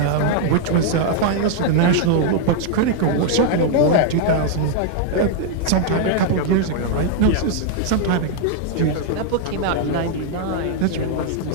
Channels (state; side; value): different; both; correlation -0.01